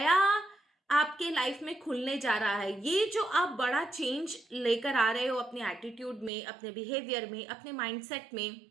आपके लाइफ में खुलने जा रहा है। ये जो आप बड़ा चेंज लेकर आ रहे हो अपने एटीट्यूड में, अपने बिहेवियर में, अपने माइंडसेट में,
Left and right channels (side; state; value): left; drops out; at 6.3 s